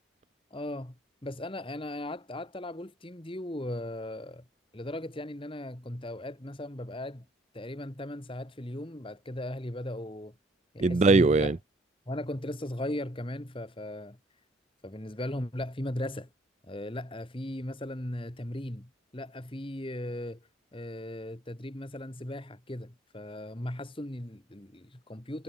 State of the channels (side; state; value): both; normal; correlation 0.62